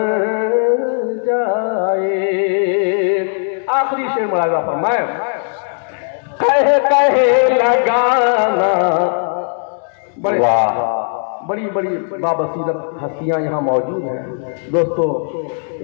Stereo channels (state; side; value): silent; right; digital silence